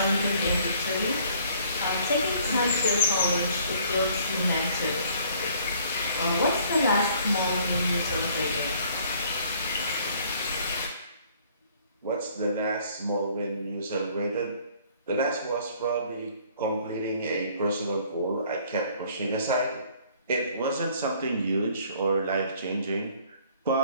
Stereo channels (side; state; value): both; inverted; correlation -0.58